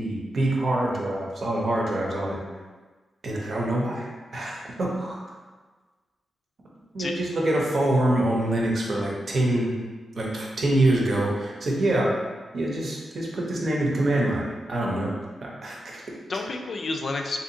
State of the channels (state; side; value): normal; both; correlation 0.87